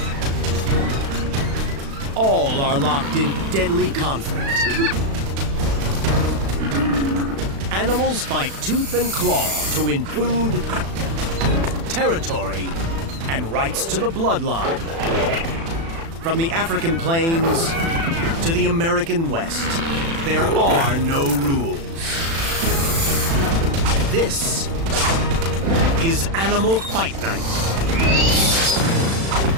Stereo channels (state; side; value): late; left; 36 ms